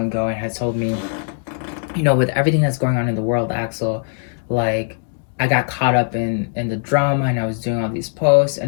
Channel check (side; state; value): right; silent; digital silence